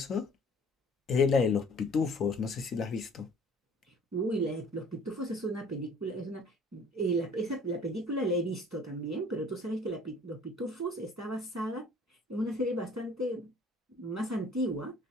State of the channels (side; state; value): both; normal; correlation 0.52